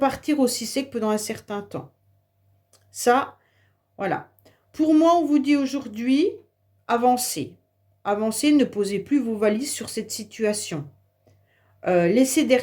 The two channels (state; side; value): identical; both; correlation 1.00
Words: aussi sec pendant un certain temps. Ça, voilà. Pour moi, on vous dit aujourd'hui, avancez. Avancez, ne posez plus vos valises sur cette situation. Laissez